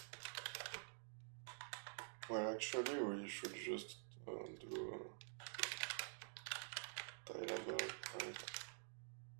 well, actually, we should just do tileable, right?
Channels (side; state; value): left; silent; digital silence